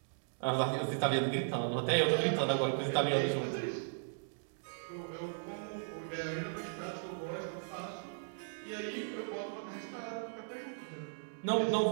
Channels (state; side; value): silent; left; digital silence